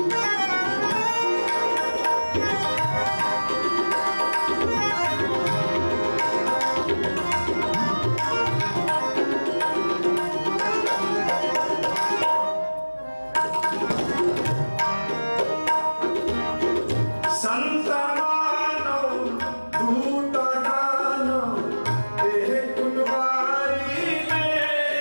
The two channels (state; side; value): inverted; both; correlation -1.00